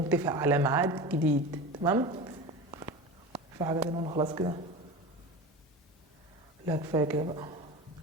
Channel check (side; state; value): both; normal; correlation 0.30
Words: تتفق على ميعاد جديد. تمام؟ في حاجة تانية ولا خلاص كده؟ لا كفاية كده بقى.